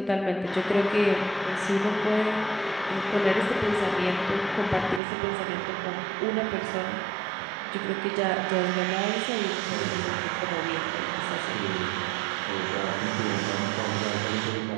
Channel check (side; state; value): left; drops out; at 5.0 s